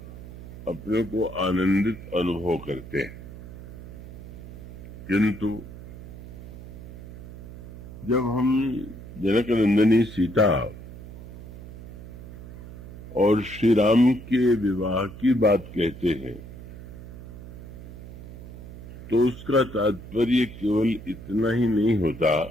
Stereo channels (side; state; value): right; noise; hum, 14 dB below the sound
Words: अपने को आनंदित अनुभव करते हैं। किंतु जब हम जनक नंदिनी सीता और श्री राम के विवाह की बात कहते हैं तो उसका तात्पर्य केवल इतना ही नहीं होता